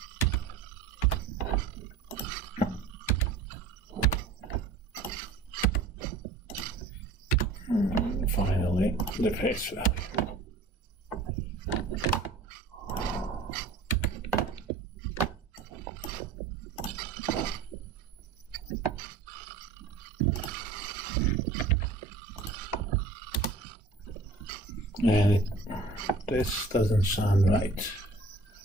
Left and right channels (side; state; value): left; quieter; 3.8 dB